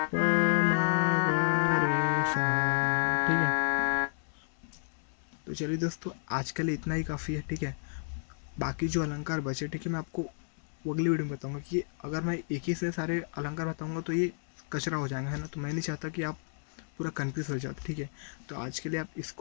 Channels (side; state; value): right; silent; 57 dB below the other